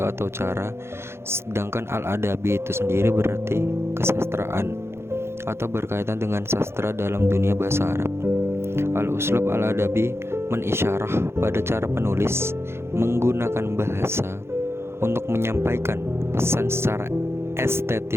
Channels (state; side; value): late; left; 0.12 ms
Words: atau cara, sedangkan al-adabi itu sendiri berarti kesastraan atau berkaitan dengan sastra dalam dunia bahasa Arab. Al-uslub al-adabi menisyarah pada cara penulis menggunakan bahasa untuk menyampaikan pesan secara